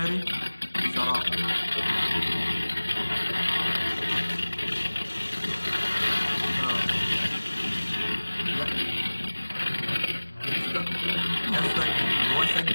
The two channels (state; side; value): inverted; both; correlation -1.00